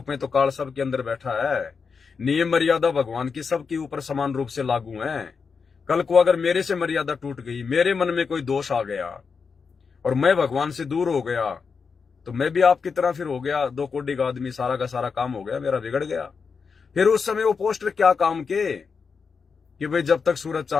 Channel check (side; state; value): right; quieter; 5.5 dB